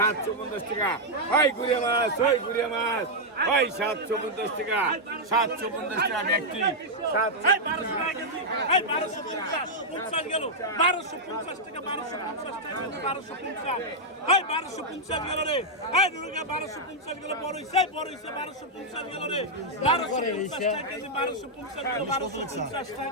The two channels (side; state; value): both; normal; correlation -0.04